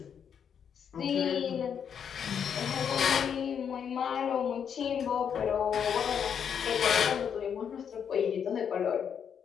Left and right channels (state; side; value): quieter; right; 7.7 dB